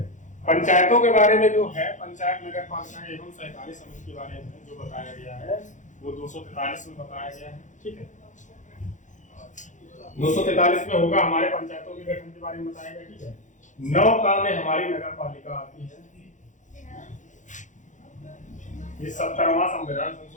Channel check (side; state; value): right; late; 0.36 ms